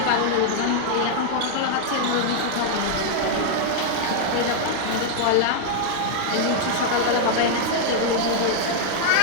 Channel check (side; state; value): both; different; correlation -0.01